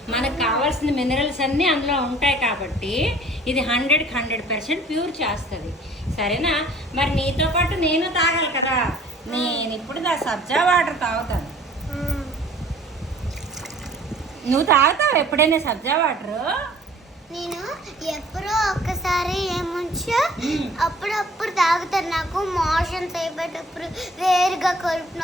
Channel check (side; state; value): both; normal; correlation 0.53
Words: మనకు కావాల్సిన మినరల్స్ అన్నీ అందులో ఉంటాయి కాబట్టి ఇది 100% ప్యూర్ చేస్తుంది. సరేనా? మరి నీతో పాటు నేను తాగాలి కదా. నేను ఇప్పుడు సబ్జా వాటర్ తాగుతాను. నువ్వు తాగుతావు ఎప్పుడైనా సబ్జా వాటర్? నేను ఎప్పుడో ఒక్కసారి ఏముంచో అప్పుడప్పుడు తాగుతాను. నాకు మోషన్స్ అయిపోయేటప్పుడు, వేరుగా కడుపు